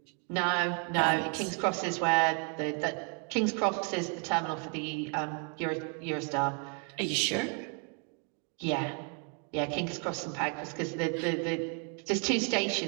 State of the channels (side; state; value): left; quieter; 39.6 dB